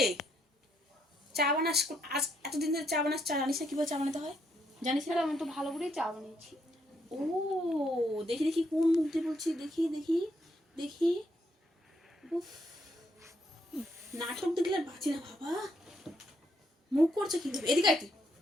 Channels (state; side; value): normal; both; correlation 0.74